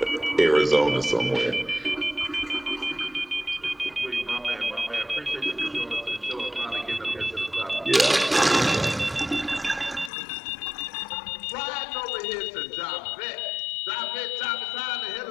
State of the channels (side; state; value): right; drops out; at 10.1 s